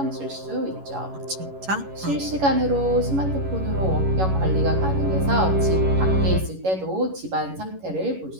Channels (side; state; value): left; late; 11 ms